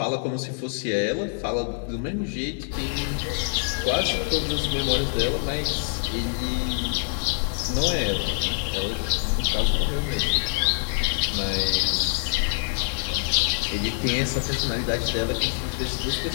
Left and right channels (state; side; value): silent; right; digital silence